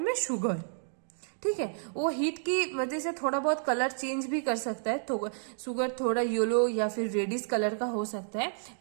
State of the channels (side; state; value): left; silent; digital silence